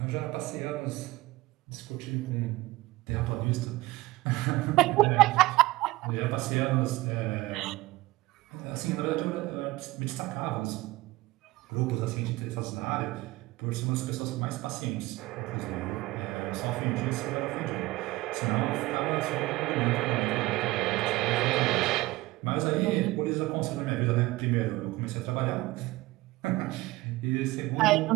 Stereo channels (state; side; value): quieter; left; 19.4 dB